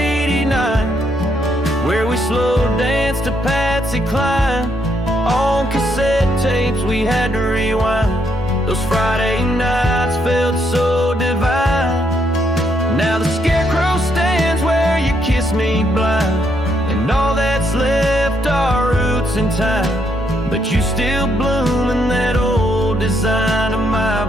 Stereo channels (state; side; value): normal; both; correlation 0.75